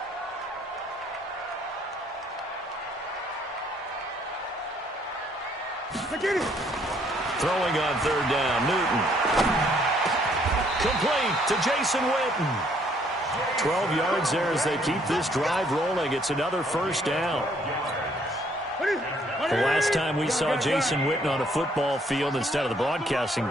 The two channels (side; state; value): both; normal; correlation 0.65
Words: Get it. Throwing on 3rd down, Newton. Complete to Jason Witten. 12 yards there as they keep this drive rolling. It's another 1st down. The last time we saw Jason Witten on a football field instead of the broadcasting